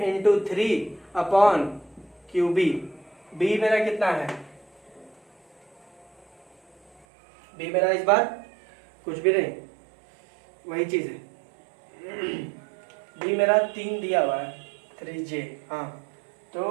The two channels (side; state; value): left; drops out; at 7.1 s